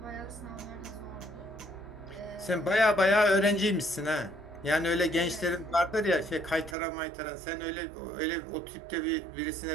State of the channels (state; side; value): drops out; left; at 6.8 s